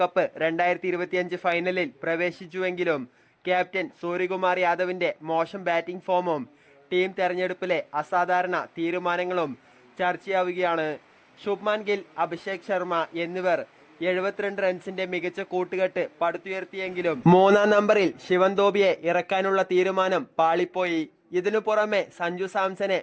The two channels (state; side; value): identical; both; correlation 1.00